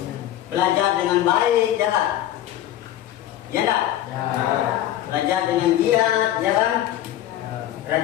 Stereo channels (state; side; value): quieter; right; 12.7 dB